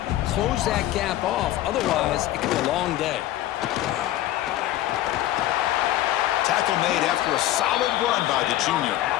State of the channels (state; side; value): quieter; right; 14.4 dB